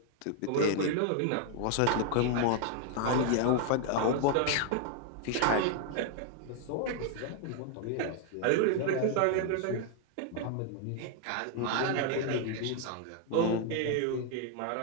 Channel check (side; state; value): both; different; correlation 0.00